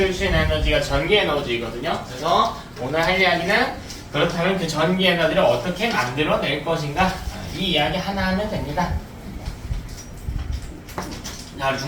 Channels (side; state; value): both; identical; correlation 1.00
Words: 수 있는 에너지가 전기 에너지거든요. 그래서 오늘 할 이야기는 그렇다면 그 전기 에너지를 어떻게 만들어낼 것인가 이 이야기 하나 하면 됩니다. 자,